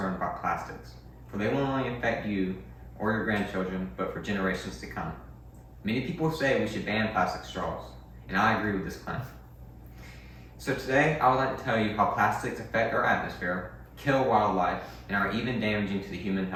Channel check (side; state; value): both; identical; correlation 1.00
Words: about plastics, for they will not only affect you or your grandchildren, but for generations to come. Many people say we should ban plastic straws, and I agree with this claim. So today, I would like to tell you how plastics affect our atmosphere, kill wildlife, and are even damaging to the human